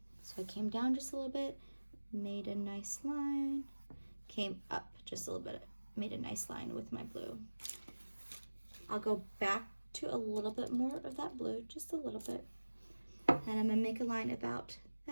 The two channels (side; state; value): both; inverted; correlation -1.00